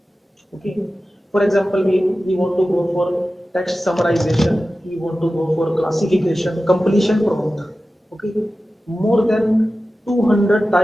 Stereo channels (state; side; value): normal; both; correlation 0.94